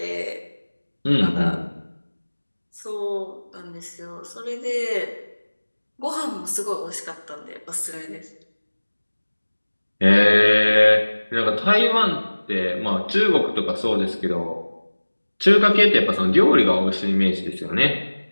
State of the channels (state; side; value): inverted; both; correlation -1.00